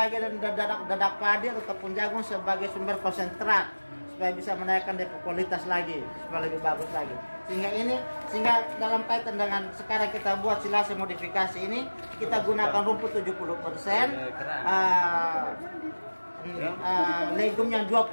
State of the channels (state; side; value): inverted; both; correlation -1.00